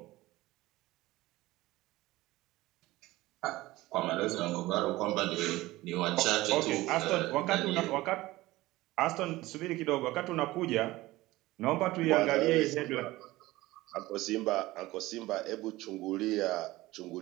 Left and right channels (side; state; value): left; quieter; 18.4 dB